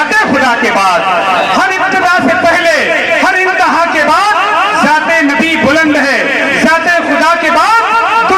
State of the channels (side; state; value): both; identical; correlation 1.00